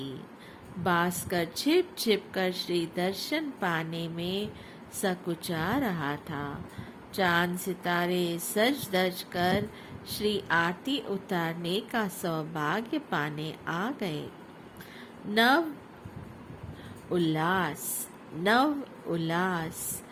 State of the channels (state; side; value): identical; both; correlation 1.00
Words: भास्कर छिप छिप कर श्री दर्शन पाने में सकुचा रहा था। चांद सितारे सज धज कर श्री आरती उतारने का सौभाग्य पाने आ गए। नव उल्लास